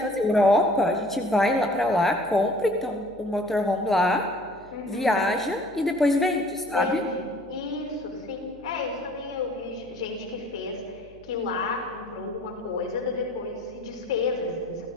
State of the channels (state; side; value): noise; left; hum, 25 dB below the sound